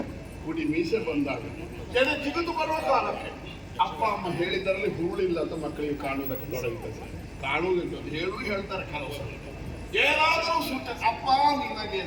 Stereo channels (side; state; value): both; identical; correlation 1.00